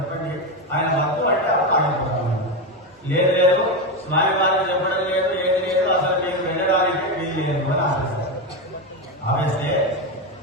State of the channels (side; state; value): both; normal; correlation 0.13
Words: ఆయన వద్దు అంటే ఆగిపోతాము. లేదు లేదు, స్వామి వారికి చెప్పడం లేదు, ఏది లేదు, అసలు మీకు వెళ్ళడానికి వీలు లేదు అని ఆపేస్తారు. ఆపేస్తే